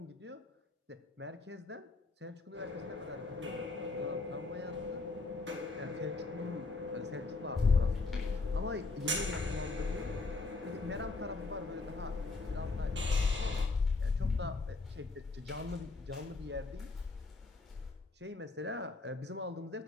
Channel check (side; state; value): right; quieter; 3.6 dB